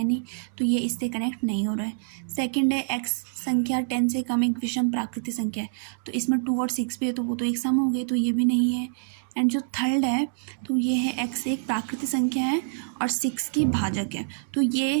नहीं, तो ये इससे कनेक्ट नहीं हो रहा है। सेकंड है x संख्या 10 से कम एक विषम प्राकृतिक संख्या है, तो इसमें 2 और 6 भी है तो वो तो एक सम हो गए, तो ये भी नहीं है। एंड जो थर्ड है तो ये है x एक प्राकृतिक संख्या है और 6 की भाजक है, तो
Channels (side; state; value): left; silent; digital silence